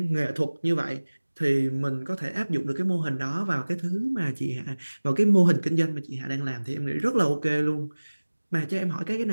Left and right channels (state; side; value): inverted; both; correlation -1.00